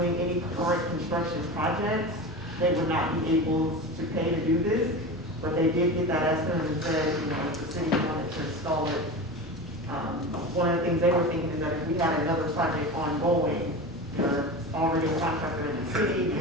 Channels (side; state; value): both; normal; correlation 0.28